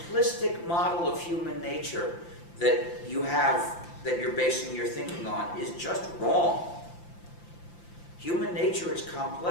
model of human nature that you're basing your thinking on is just wrong. Human nature is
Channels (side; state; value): right; late; 5.8 ms